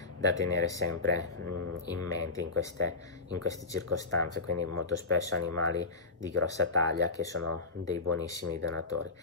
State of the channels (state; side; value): quieter; right; 3.7 dB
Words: da tenere sempre in mente in queste circostanze, quindi molto spesso animali di grossa taglia che sono dei buonissimi donatori.